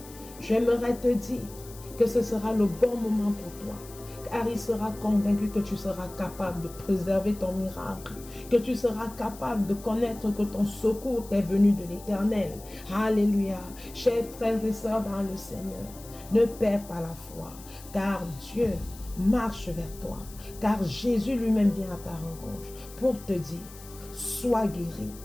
j'aimerais te dire que ce sera le bon moment pour toi. car il sera convaincu que tu seras capable de préserver ton miracle, que tu seras capable de connaître que ton secours t'est venu de l'Éternel. Alléluia. Chers frères et sœurs dans le Seigneur, ne perds pas la foi, car Dieu marche vers toi, car Jésus lui-même vient à ta rencontre pour te dire, sois guéri,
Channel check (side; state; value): left; noise; hiss, 19 dB below the sound